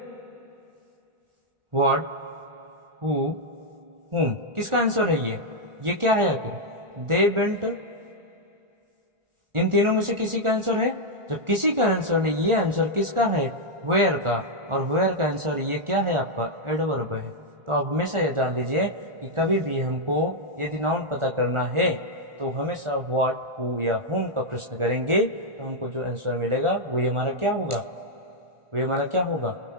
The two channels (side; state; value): left; late; 1.4 ms